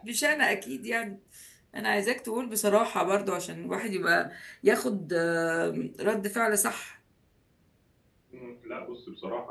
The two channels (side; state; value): both; identical; correlation 1.00